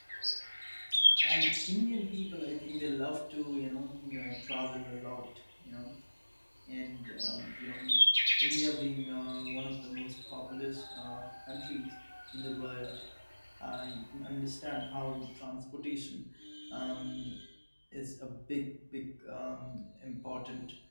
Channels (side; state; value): both; inverted; correlation -1.00